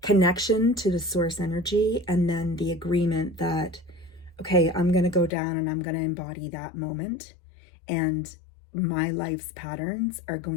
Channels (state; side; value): drops out; right; at 5.3 s